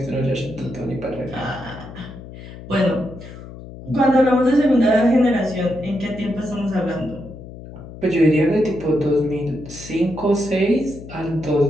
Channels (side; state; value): left; noise; hum, 14 dB below the sound